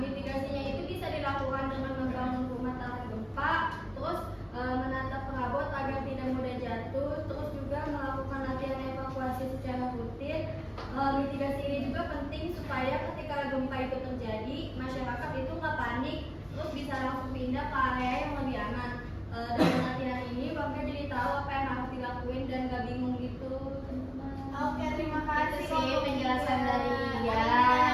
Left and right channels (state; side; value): identical; both; correlation 1.00